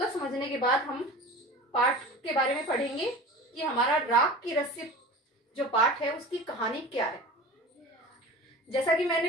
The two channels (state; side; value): normal; both; correlation 0.36